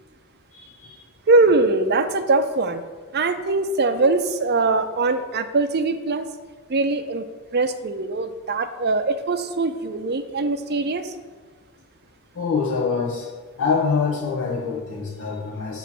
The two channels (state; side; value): normal; both; correlation -0.11